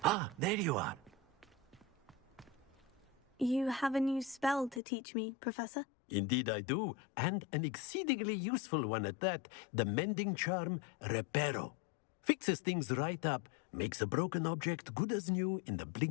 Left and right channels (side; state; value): right; drops out; at 4.8 s